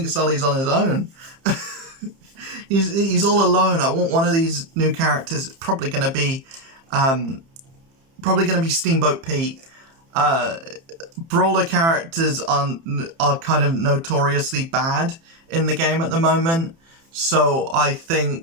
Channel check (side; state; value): left; late; 30 ms